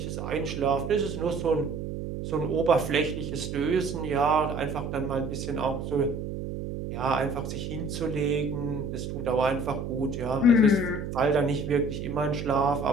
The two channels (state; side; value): noise; right; hum, 5 dB below the sound